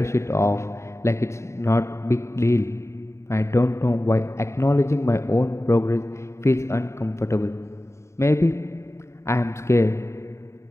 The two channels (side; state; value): right; late; 0.14 ms